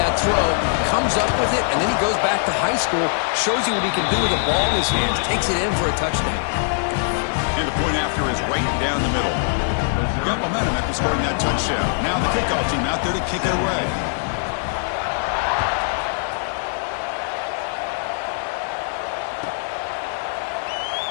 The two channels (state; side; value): silent; right; digital silence